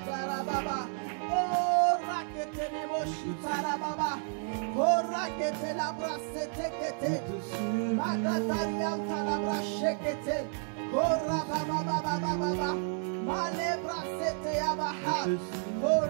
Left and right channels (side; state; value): left; silent; 57 dB below the other